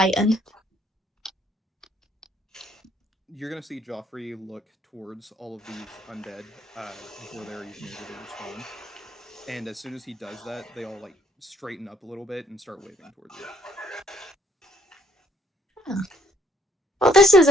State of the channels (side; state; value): both; normal; correlation 0.65